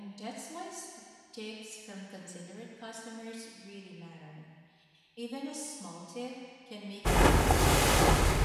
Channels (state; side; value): identical; both; correlation 1.00